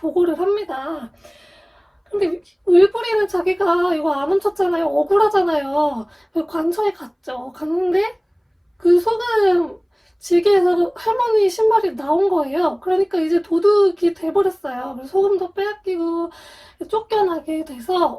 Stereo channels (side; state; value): both; identical; correlation 1.00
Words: 합니다. 근데 을불이는 자기가 이거 안 훔쳤잖아요. 억울하잖아요. 관청에 갔죠. 갔는데 그 소금 지게에서 할머니 신발이 나온 거예요. 그러니까 이제 도둑이 돼버렸어요. 그래서 소금도 빼앗기고 쫓겨나게